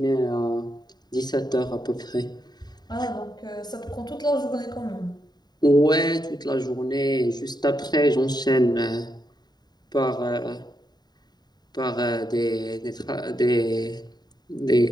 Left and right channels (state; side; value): late; right; 0.20 ms